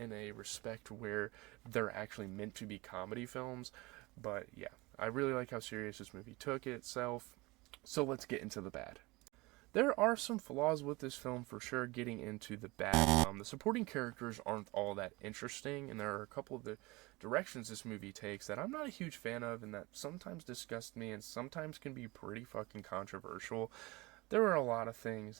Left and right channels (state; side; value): quieter; left; 23.0 dB